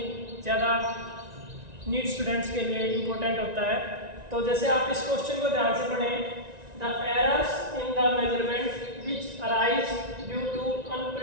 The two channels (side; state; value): left; late; 1.9 ms